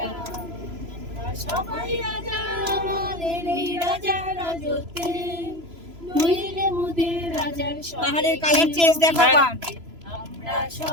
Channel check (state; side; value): late; left; 3.0 ms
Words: আমরা সবাই রাজা আমাদের এই রাজার রাজত্বে, নইলে মোদের রাজার সাথে পাহাড়ের কালার চেঞ্জ দেখো। আমরা